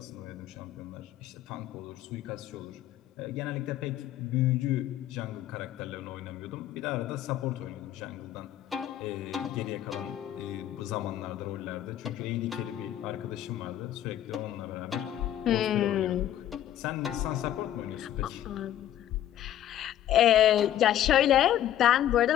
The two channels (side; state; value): right; quieter; 11.8 dB